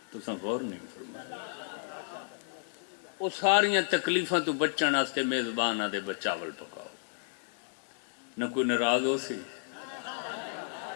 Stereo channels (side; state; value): right; silent; digital silence